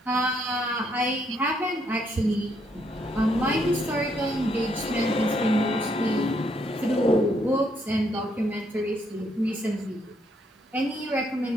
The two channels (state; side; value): normal; both; correlation 0.73